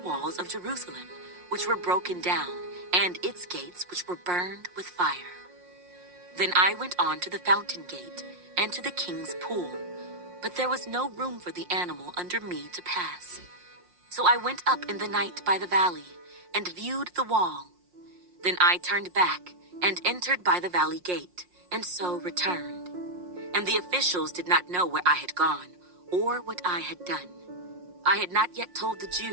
of Jerusalem, which were broken down, and its gates which were burned with fire. Then I went on to the fountain gate, and to the king's pool, but there was no room for the animal under me to pass. So I went up in the night by the valley, and viewed the wall. Then I turned back, and entered by the valley gate, and so returned. And the officials did not know where I had gone, or what I had done. I had not yet told the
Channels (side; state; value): left; late; 5.6 ms